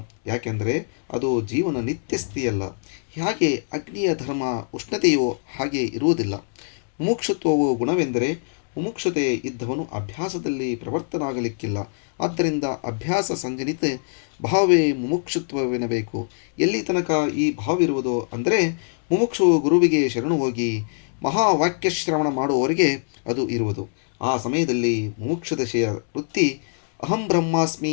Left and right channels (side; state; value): right; silent; digital silence